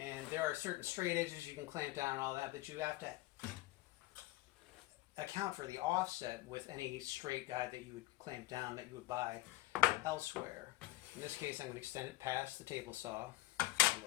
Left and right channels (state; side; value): quieter; right; 18.7 dB